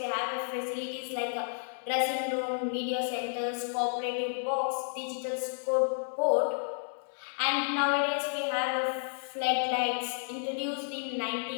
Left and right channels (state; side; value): silent; right; digital silence